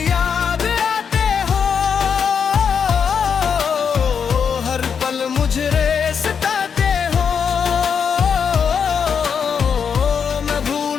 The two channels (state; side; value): quieter; right; 6.8 dB